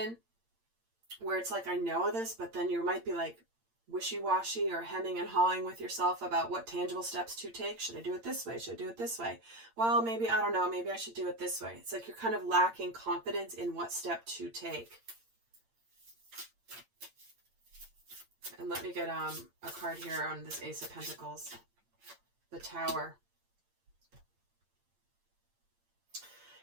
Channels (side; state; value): left; late; 8.8 ms